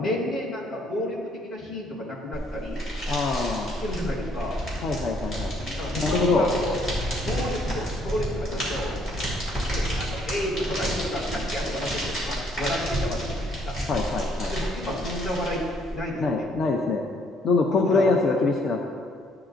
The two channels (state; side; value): normal; both; correlation 0.66